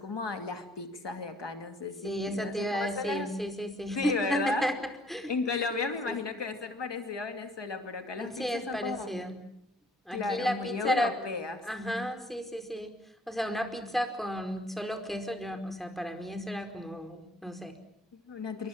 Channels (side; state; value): both; normal; correlation 0.59